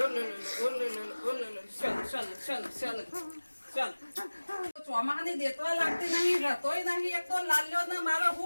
ચોમાહાની દેતવા લાગતી નહીં રતોય નહીં એક તો લાલ્યો ને મારે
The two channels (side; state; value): both; inverted; correlation -1.00